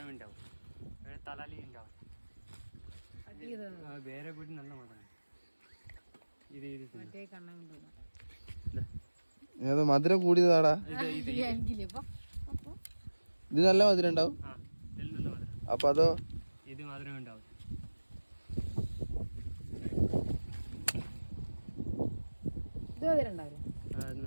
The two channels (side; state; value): both; inverted; correlation -1.00